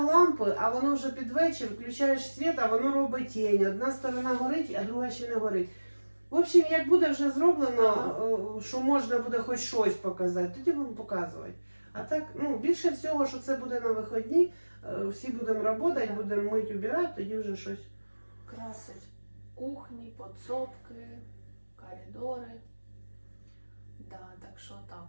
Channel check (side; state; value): both; inverted; correlation -1.00